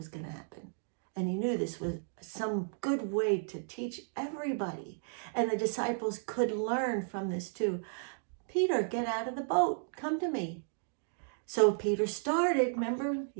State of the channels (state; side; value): silent; left; digital silence